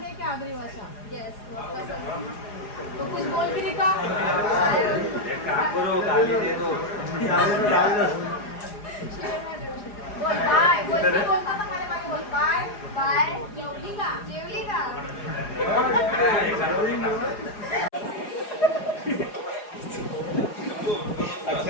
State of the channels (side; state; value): right; late; 4.9 ms